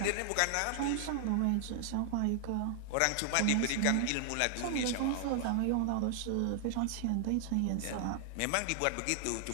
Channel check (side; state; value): both; different; correlation 0.00